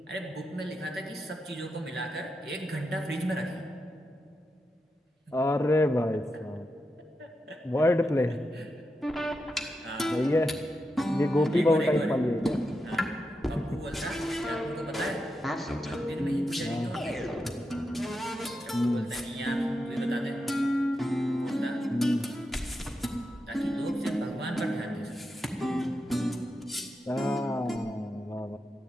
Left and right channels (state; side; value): normal; both; correlation 0.87